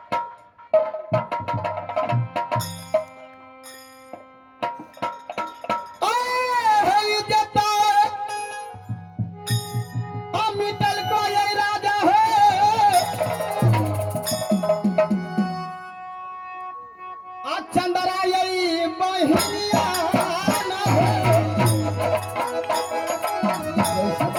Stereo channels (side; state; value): both; identical; correlation 1.00